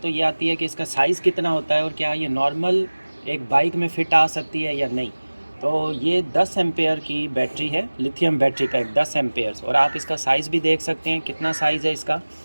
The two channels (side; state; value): both; inverted; correlation -1.00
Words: तो ये आती है कि इसका साइज़ कितना होता है और क्या ये नॉर्मल एक बाइक में फ़िट आ सकती है या नहीं। तो ये 10 एम्पेयर की बैटरी है, लिथियम बैटरी पैक 10 एम्पेयर्स, और आप इसका साइज़ भी देख सकते हैं कितना साइज़ है इसका।